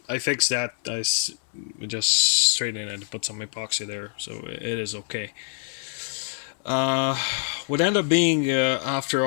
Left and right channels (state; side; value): silent; right; 62 dB below the other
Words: fixed that. Just straightened it and put some epoxy there, so it is okay. Uh, what ended up being, after